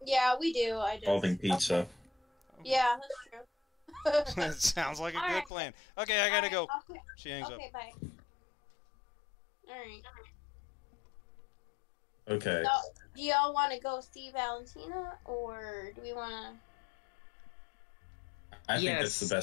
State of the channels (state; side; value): drops out; right; at 5.5 s